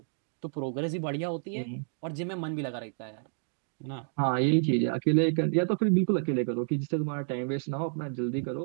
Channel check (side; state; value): left; silent; 58 dB below the other